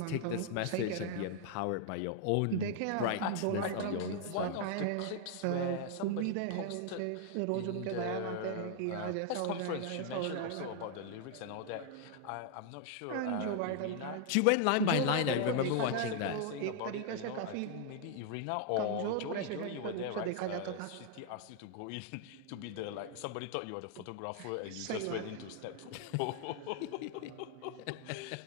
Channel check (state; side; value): different; both; correlation 0.00